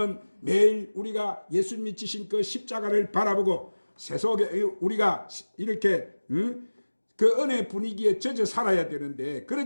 매일 우리가 예수님이 지신 그 십자가를 바라보고 세속에 우리가 이렇게 그 은혜 분위기에 젖어 살아야 되는데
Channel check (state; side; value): inverted; both; correlation -1.00